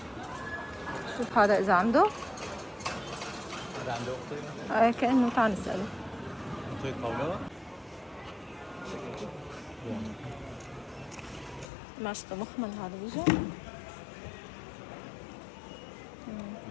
شوف هذا إذا عنده. هذا عنده أختي؟ كأنه تعال نسأله. أختي طاولة؟ ماشطة مخمل هذا بيجي.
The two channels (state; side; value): drops out; right; at 11.7 s